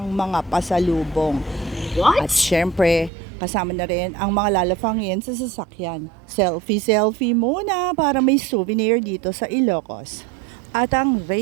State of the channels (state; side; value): drops out; left; at 3.1 s